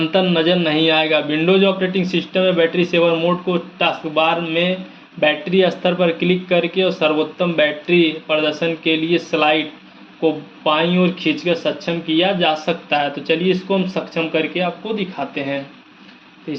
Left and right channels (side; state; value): both; identical; correlation 1.00